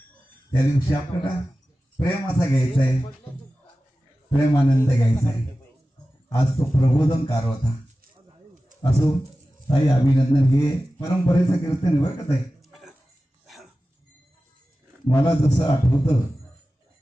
त्या दिवशी आपल्याला प्रेम असा घ्यायचा आहे, प्रेमानंद घ्यायचा आहे. आज तो प्रबोधनकार होता. असो ताई, अभिनंदन. हे परंपरेचं कीर्तन आहे बरं का ताई. मला जसं आठवतं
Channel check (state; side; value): normal; both; correlation 0.95